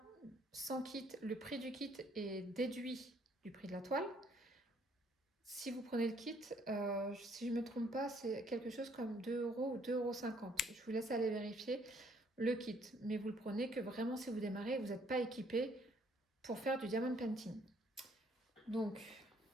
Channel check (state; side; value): normal; both; correlation 0.65